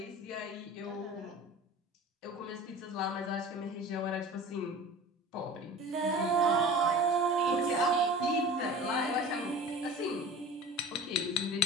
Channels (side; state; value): both; normal; correlation 0.38